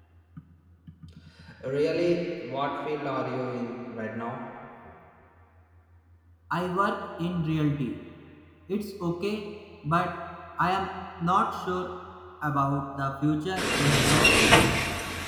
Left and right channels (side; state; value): both; identical; correlation 1.00